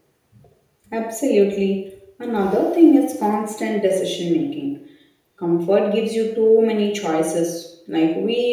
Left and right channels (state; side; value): identical; both; correlation 1.00